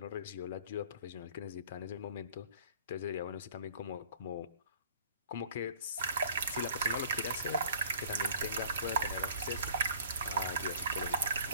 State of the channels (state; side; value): inverted; both; correlation -0.50